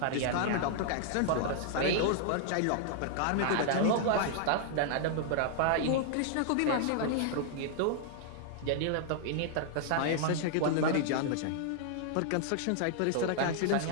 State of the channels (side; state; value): both; different; correlation -0.01